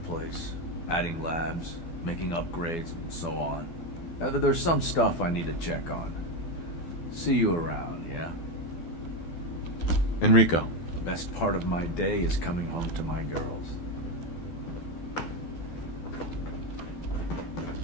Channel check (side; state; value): right; late; 12 ms